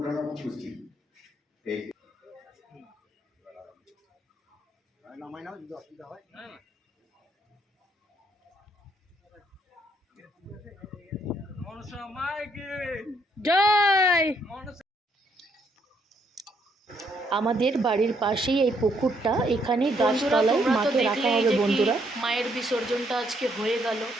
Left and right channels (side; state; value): both; normal; correlation 0.72